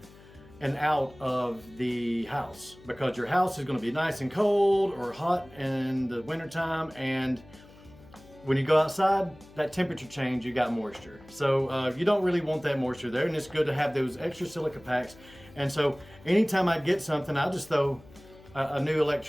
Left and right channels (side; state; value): left; noise; hum, 23 dB below the sound